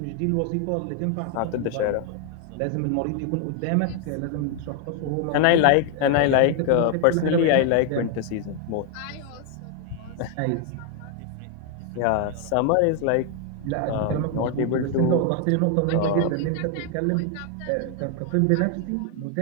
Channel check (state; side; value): different; both; correlation 0.01